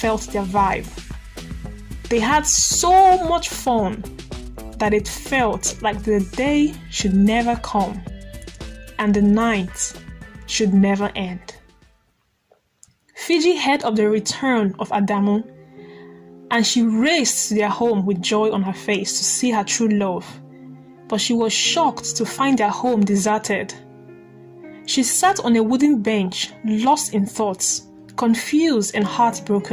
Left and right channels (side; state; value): both; identical; correlation 1.00